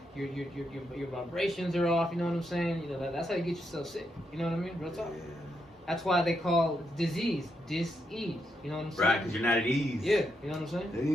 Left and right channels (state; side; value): normal; both; correlation 0.81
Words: Your vibrations are off. You know what I'm saying? You know that's how you get yourself sick. You know what I mean? Real talk. Yeah. That's why they call disease dis-ease. You know what I'm saying? Right, because you're not at ease. Yeah. You know what I'm